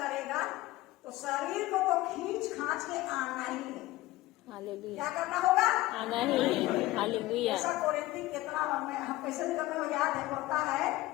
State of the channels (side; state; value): right; quieter; 17.8 dB